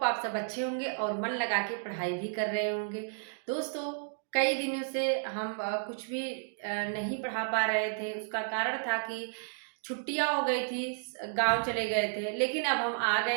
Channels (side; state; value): left; silent; digital silence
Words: आप सब अच्छे होंगे और मन लगा के पढ़ाई भी कर रहे होंगे। दोस्तों, कई दिनों से हम कुछ भी नहीं पढ़ा पा रहे थे। उसका कारण था कि छुट्टियाँ हो गई थी, गाँव चले गए थे। लेकिन अब हम आ